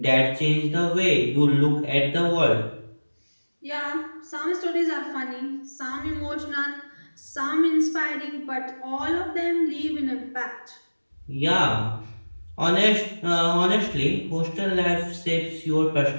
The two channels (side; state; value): both; inverted; correlation -1.00